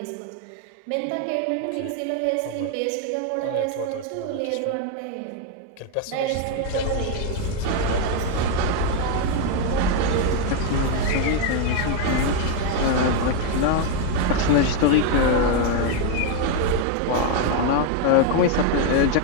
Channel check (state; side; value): different; both; correlation 0.01